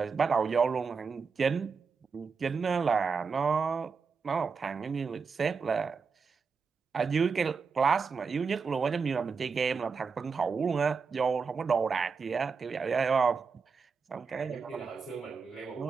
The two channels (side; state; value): left; quieter; 5.3 dB